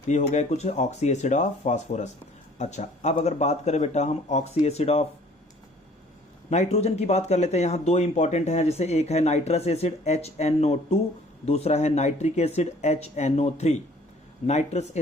तो ये हो गया कुछ ऑक्सी एसिड ऑफ फास्फोरस। अच्छा अब अगर बात करें बेटा हम ऑक्सी एसिड ऑफ नाइट्रोजन की बात कर लेते हैं। यहाँ 2 इंपॉर्टेंट हैं, जैसे एक है नाइट्रस एसिड HNO2, दूसरा है nitric acid HNO3। Nitrous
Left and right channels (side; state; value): both; normal; correlation 0.55